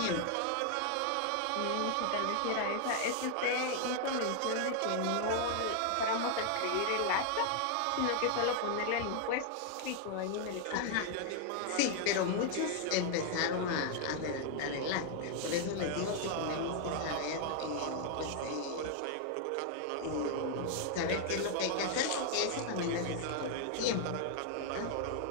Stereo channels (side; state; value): both; different; correlation 0.00